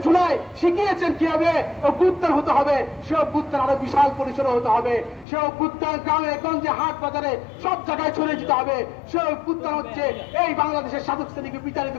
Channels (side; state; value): right; drops out; at 5.2 s